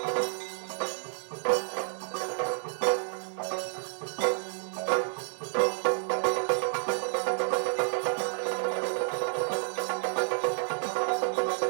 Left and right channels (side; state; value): left; silent; digital silence